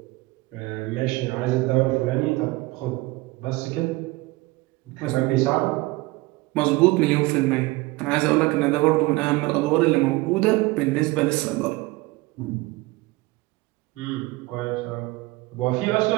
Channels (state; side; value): quieter; left; 21.8 dB